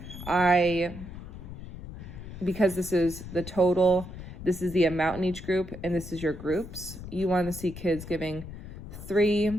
Because this is the total, this is the amount in each group, and this is your groups. You want to see kids giving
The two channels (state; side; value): noise; left; rumble, 12 dB below the sound